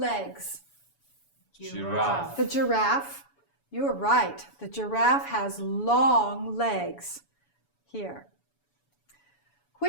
Giraffe. The giraffe. You're right. The giraffe has long legs. Here.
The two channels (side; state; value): right; late; 7.0 ms